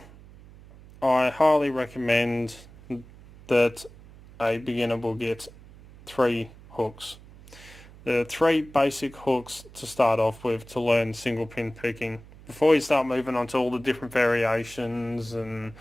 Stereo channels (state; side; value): noise; right; hum, 21 dB below the sound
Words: I highly recommend that a beginner will get 3 hooks. There are 3 basic hooks to start off with to learn single pin picking. Before you start moving on to all the different variations and